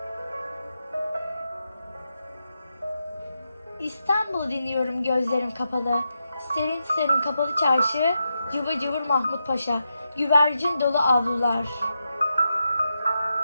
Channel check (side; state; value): both; inverted; correlation -0.86